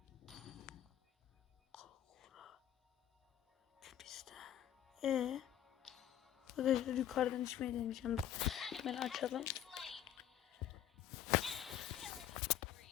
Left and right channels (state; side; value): quieter; right; 10.8 dB